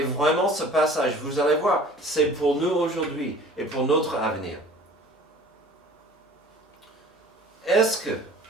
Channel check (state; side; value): normal; both; correlation 0.47